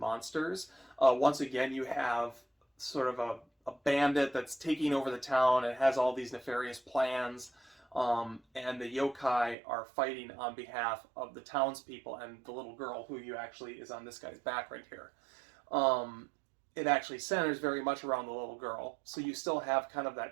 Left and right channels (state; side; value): drops out; left; at 9.6 s